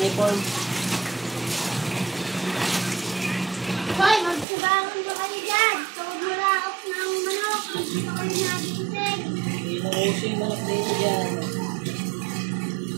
Hoy, magsabangan ba kayo dyan? Tawag mo laok ng manok. Hindi pa kayo nagising. Inuuso yung manok dito dyan.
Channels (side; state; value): left; drops out; at 4.5 s